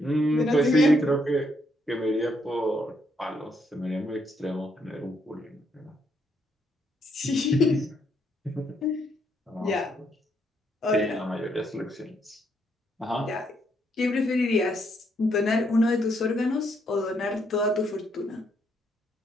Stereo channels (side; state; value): both; normal; correlation 0.74